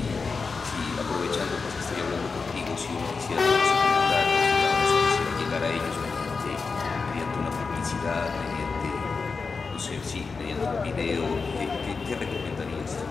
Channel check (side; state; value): right; quieter; 4.7 dB